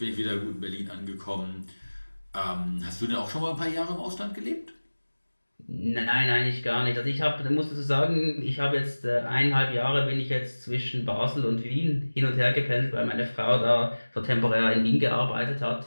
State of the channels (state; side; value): inverted; both; correlation -1.00